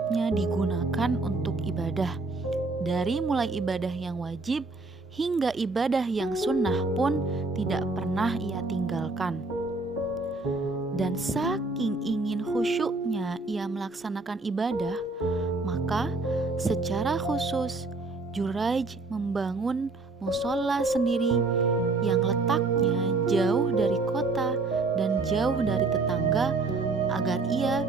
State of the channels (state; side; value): quieter; left; 3.5 dB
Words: digunakan untuk ibadah. Dari mulai ibadah yang wajib hingga ibadah yang sunnah pun tidak pernah ia tinggalkan. Dan saking ingin khusyuknya ia melaksanakan ibadah, maka secara khusus Juraij membangun mushola sendiri yang letaknya jauh dari kota dan jauh dari tetangga agar ia